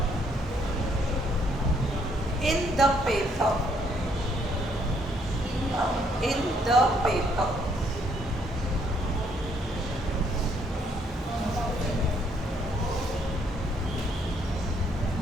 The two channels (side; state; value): both; normal; correlation 0.69